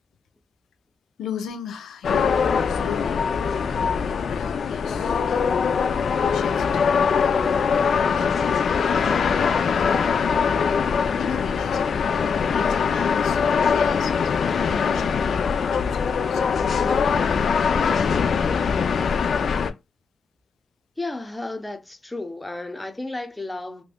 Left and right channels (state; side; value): quieter; right; 5.8 dB